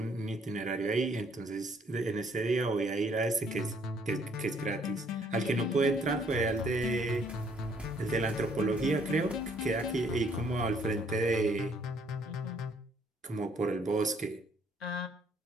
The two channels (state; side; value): normal; both; correlation 0.65